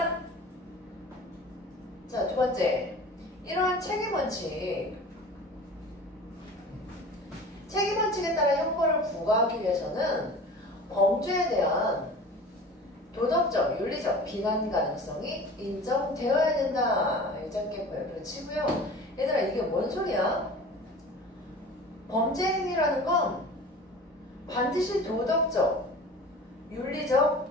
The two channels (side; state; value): both; normal; correlation 0.40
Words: 자, 두 번째, 이러한 책임원칙. 책임원칙에 따라 형벌을 부과하기 위해서는 범죄에 대한 도덕적, 윤리적 비난 가능성이 인정되어야 된다. 짧게 보여 치고요. 얘들아, 이게 뭔 소리야? 범죄 행위라는 건 반드시 도덕적, 윤리적